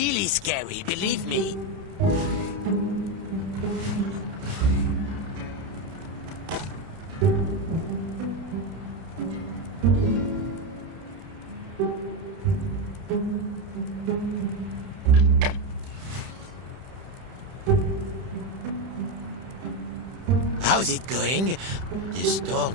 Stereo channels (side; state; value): left; late; 31 ms